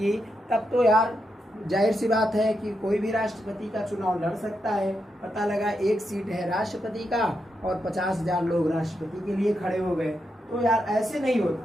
तब तो यार जाहिर सी बात है कि कोई भी राष्ट्रपति का चुनाव लड़ सकता है। पता लगा एक सीट है राष्ट्रपति का और 50,000 लोग राष्ट्रपति के लिए खड़े हो गए, तो यार ऐसे नहीं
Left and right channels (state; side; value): normal; both; correlation 0.84